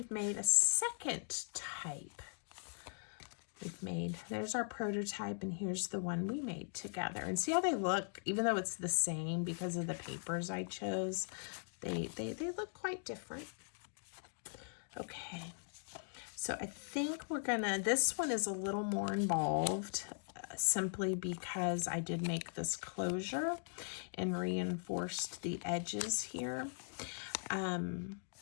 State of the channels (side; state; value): right; silent; digital silence